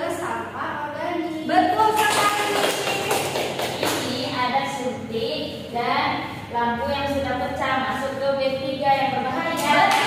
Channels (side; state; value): both; identical; correlation 1.00